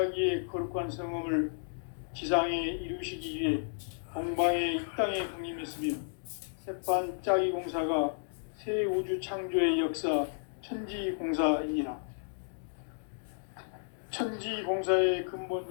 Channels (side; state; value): right; silent; digital silence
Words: 거룩한 성험을 지상에 이루시기 위해 동방의 이 땅에 강림했으며 새판짜기 공사가 새 우주 창조의 역사 천지공사이니라. 천지공사의 근본